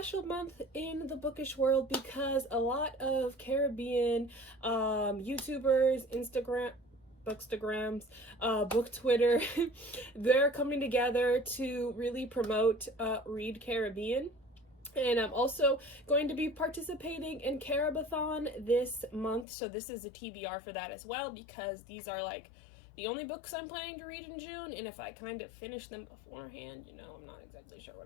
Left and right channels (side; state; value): right; drops out; at 19.5 s